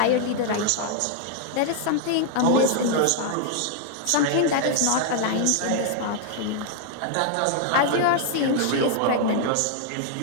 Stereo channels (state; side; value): different; both; correlation 0.00